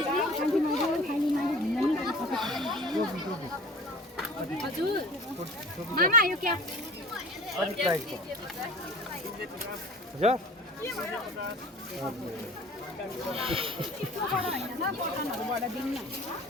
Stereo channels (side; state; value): both; normal; correlation 0.41